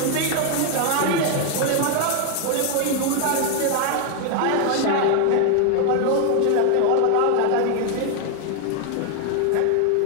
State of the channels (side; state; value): both; different; correlation 0.00